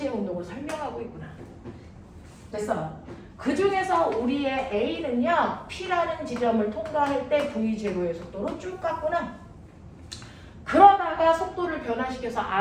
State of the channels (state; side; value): identical; both; correlation 1.00